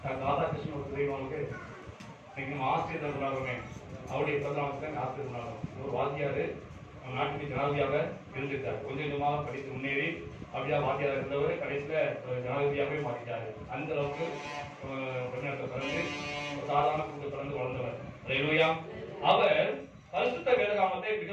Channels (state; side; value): identical; both; correlation 1.00